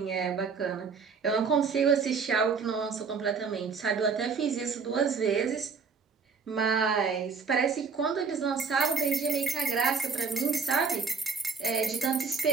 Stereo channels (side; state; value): left; quieter; 5.3 dB